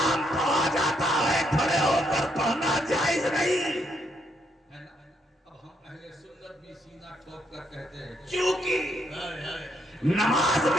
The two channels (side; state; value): both; normal; correlation 0.74